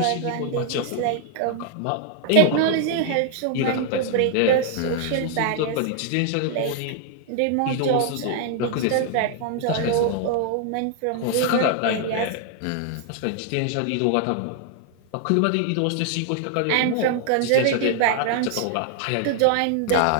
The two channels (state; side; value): different; both; correlation 0.00